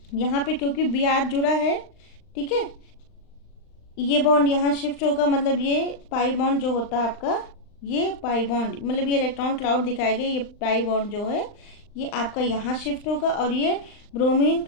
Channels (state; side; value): late; right; 39 ms